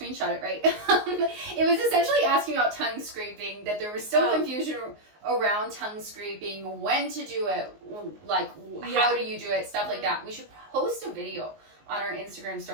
it right. It was essentially asking about tongue scraping, that there was still confusion around tongue scraping, when to do it, like how do you do it, stuff like that. We should post a video on our Instagram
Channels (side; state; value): left; late; 19 ms